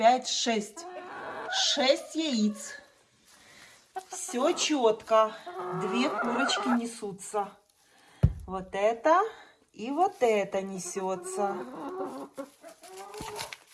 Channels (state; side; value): identical; both; correlation 1.00